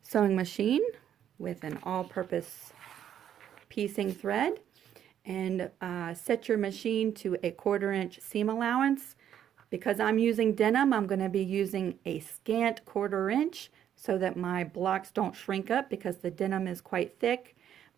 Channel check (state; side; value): quieter; left; 9.9 dB